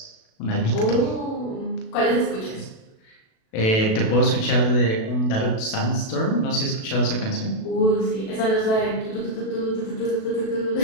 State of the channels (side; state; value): right; late; 37 ms